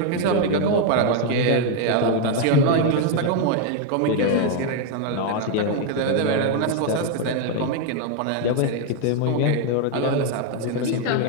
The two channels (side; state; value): both; different; correlation 0.01